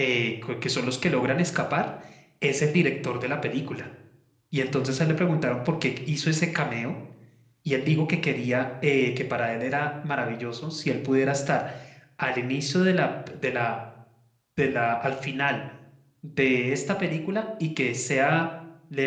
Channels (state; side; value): identical; both; correlation 1.00